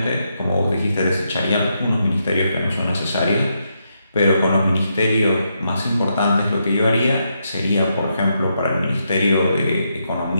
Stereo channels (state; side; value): inverted; both; correlation -0.81